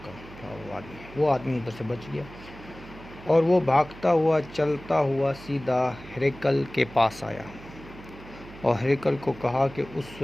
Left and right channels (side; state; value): right; noise; hum, 17 dB below the sound